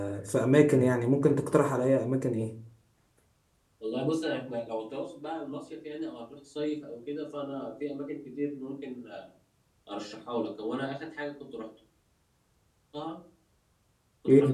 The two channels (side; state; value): both; identical; correlation 1.00